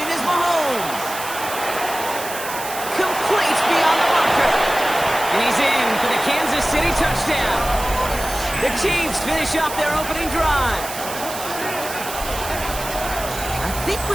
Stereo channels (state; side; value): noise; right; hiss, 9 dB below the sound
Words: is Mahomes. Complete beyond the marker. And he's in for the Kansas City touchdown. The Chiefs finish off their opening drive. I think